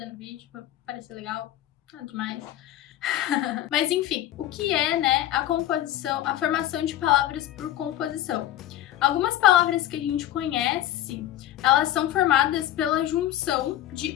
no vídeo, pra parecer legal, nada demais. Mas enfim, o que é, a composição, a formação de palavras por composição? Algumas palavras que a gente conhece, elas são formadas pela junção de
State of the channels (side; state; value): right; quieter; 13.0 dB